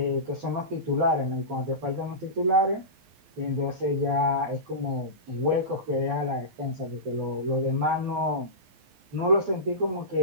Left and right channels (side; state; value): left; late; 11 ms